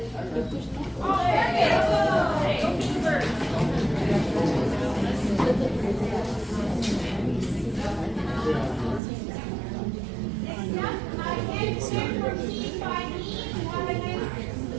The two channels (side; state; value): left; drops out; at 9.0 s